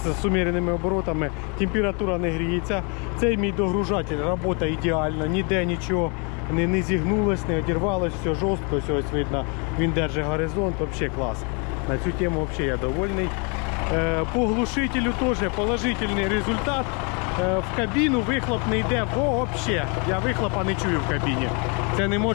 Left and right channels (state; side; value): quieter; right; 34.1 dB